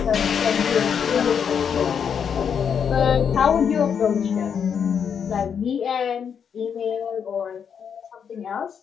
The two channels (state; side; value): quieter; right; 7.3 dB